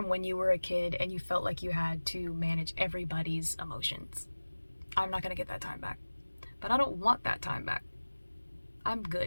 when you were a kid and you felt like you had to manage everybody's emotions. I'm not going to get that time back. But I don't want that time back. I'm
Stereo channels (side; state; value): both; inverted; correlation -1.00